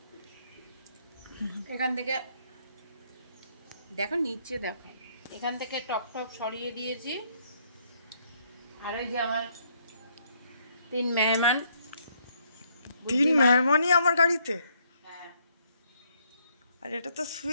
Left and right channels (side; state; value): both; inverted; correlation -0.70